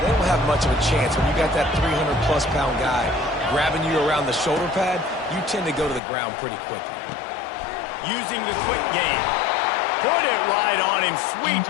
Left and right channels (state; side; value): drops out; right; at 6.0 s